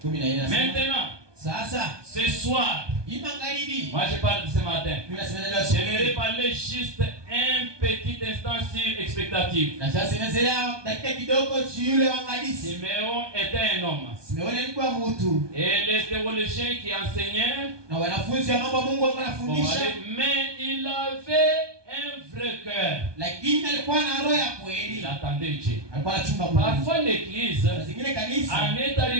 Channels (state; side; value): late; left; 1.2 ms